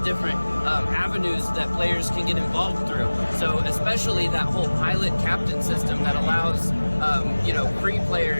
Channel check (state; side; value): inverted; both; correlation -1.00